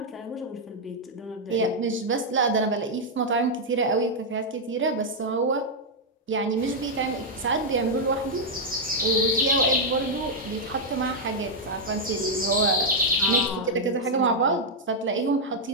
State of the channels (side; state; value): both; normal; correlation -0.03